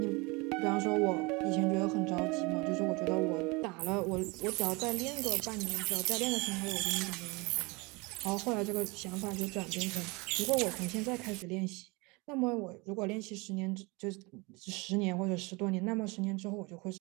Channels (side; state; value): left; quieter; 26.5 dB